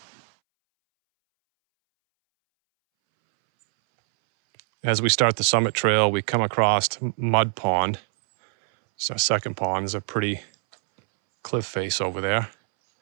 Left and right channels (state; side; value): silent; left; 63 dB below the other